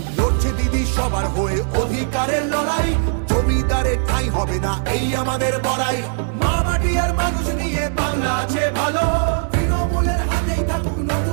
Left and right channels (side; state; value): left; silent; digital silence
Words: লড়ছে দিদি সবার হয়ে অধিকারের লড়াই, জমিদারের ঠাঁই হবে না এই আমাদের বড়াই। মা মাটি আর মানুষ নিয়ে বাংলা আছে ভালো, তৃণমূলের হাতেই থাকুক